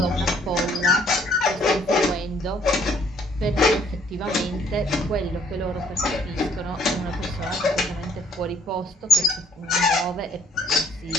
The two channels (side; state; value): both; normal; correlation 0.63